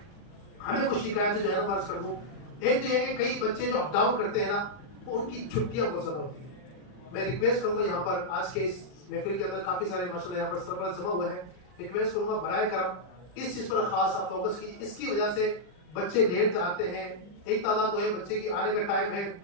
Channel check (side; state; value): right; late; 39 ms